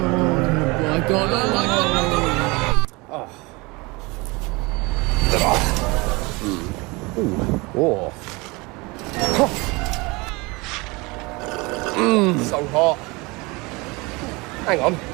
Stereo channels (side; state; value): left; quieter; 25.3 dB